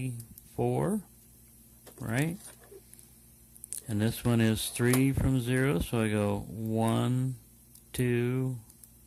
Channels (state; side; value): identical; both; correlation 1.00